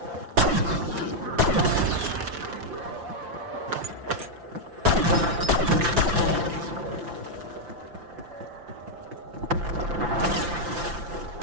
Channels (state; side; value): late; left; 5.8 ms